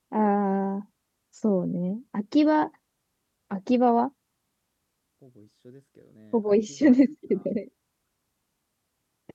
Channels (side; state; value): both; identical; correlation 1.00